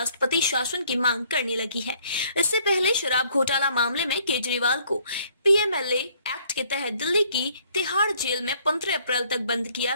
शासन की मांग करने लगी है। इससे पहले शराब घोटाला मामले में केजरीवाल को पीएमएलए एक्ट के तहत दिल्ली की तिहाड़ जेल में 15 अप्रैल तक बंद किया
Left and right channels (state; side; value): inverted; both; correlation -0.63